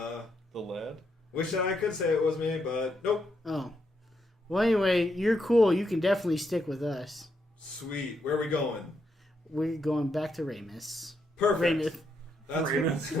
lad? Wish I could say it was me, but nope. Oh. Well, anyway, you're cool. You can definitely stick with us. Sweet. Where are we going? We're going back to Ramus. Perfect. Rameth.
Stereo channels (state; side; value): normal; both; correlation 0.79